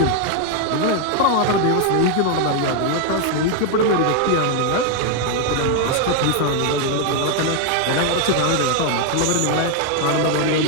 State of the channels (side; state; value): both; different; correlation 0.00